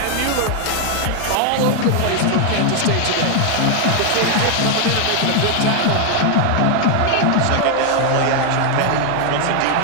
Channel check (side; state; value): both; different; correlation 0.00